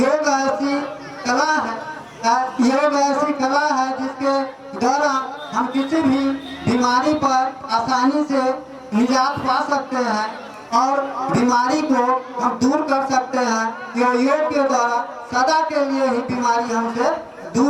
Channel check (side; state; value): both; identical; correlation 1.00